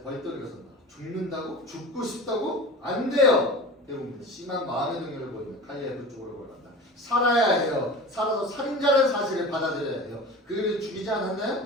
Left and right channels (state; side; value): normal; both; correlation 0.34